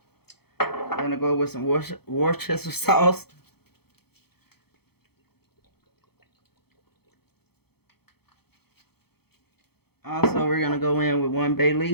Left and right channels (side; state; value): right; late; 0.96 ms